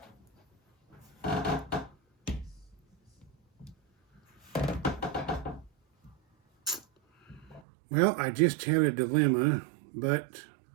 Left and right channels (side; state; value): left; drops out; at 7.6 s